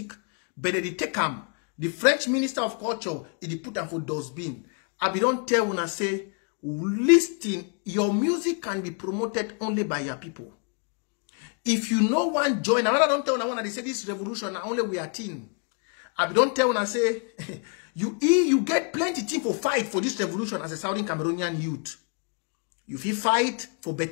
but they take them. The French Minister of Culture, he put them for dustbin. I don't tell una say, listen, your music can be promoted only by your people. If you no one join, I don't tell una they say this revolution only we are team. I don't tell una say, you get plenty thing for fight for this revolution as a Southern Cameroonian youth. You feel fight for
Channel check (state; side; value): quieter; right; 37.5 dB